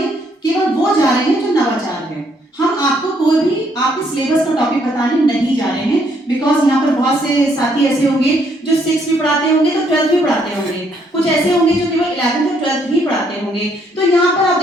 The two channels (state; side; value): normal; both; correlation 0.70